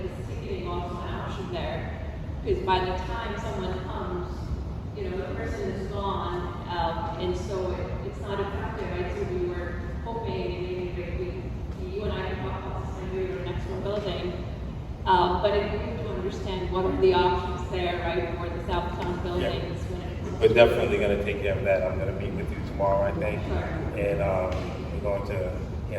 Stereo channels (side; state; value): both; identical; correlation 1.00